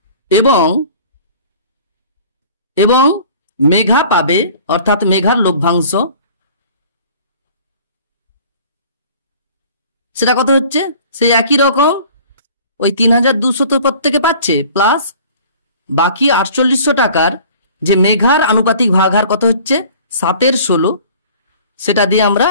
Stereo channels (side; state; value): both; inverted; correlation -0.47